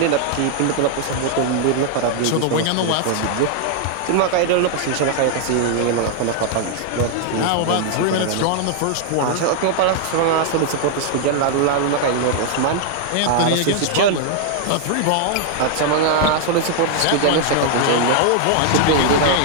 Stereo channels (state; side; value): different; both; correlation 0.00